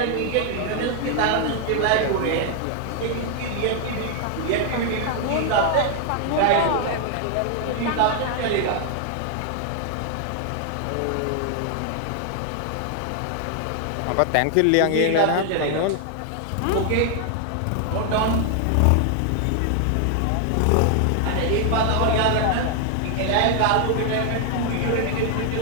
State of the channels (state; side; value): different; both; correlation 0.00